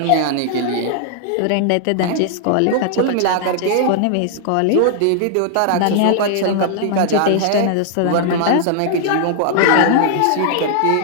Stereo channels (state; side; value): different; both; correlation -0.01